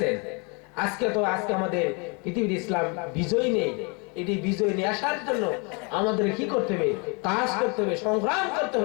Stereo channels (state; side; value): quieter; right; 32.5 dB